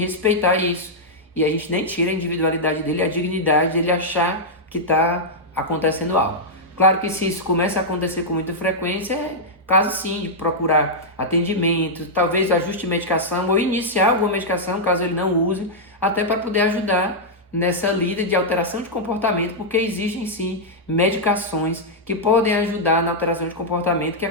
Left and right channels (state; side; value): normal; both; correlation -0.07